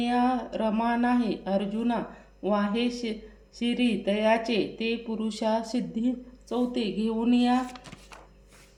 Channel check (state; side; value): identical; both; correlation 1.00